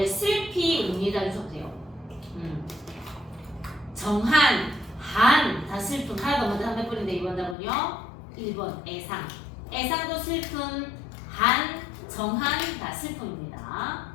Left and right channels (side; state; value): right; drops out; at 7.6 s